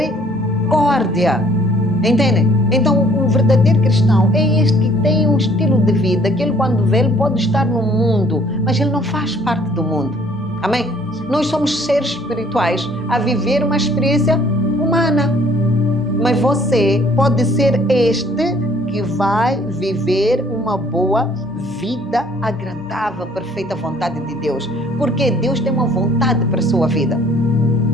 Entendem? Então, um verdadeiro cristão é este que tem um estilo de vida, que ele quando vê, ele pode estar no mundo, mas ele não faz parte do mundo. Amém? Nós somos seres espirituais a viver uma experiência humana. Mas você pode ser este que vai viver uma boa vida agradável, perfeita vontade de Deus. Porque Deus tem uma vontade para a sua vida.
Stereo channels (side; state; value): left; noise; hum, 25 dB below the sound